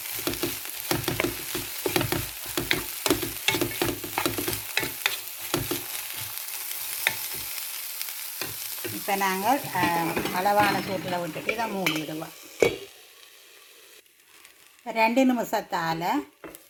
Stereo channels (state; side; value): identical; both; correlation 1.00